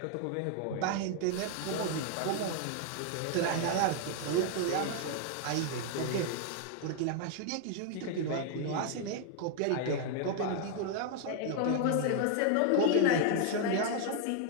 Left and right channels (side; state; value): both; different; correlation 0.00